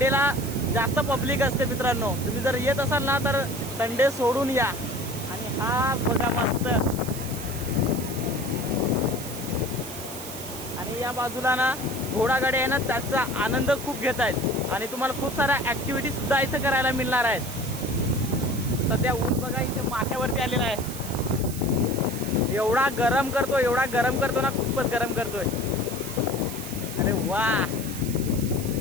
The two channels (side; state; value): right; noise; hiss, 10 dB below the sound